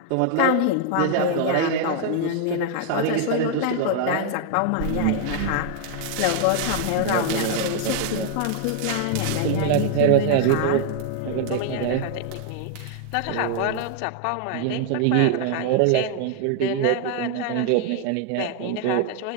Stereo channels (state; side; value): different; both; correlation 0.00